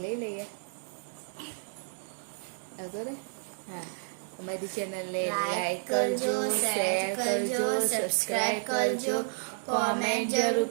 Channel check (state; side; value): silent; left; 57 dB below the other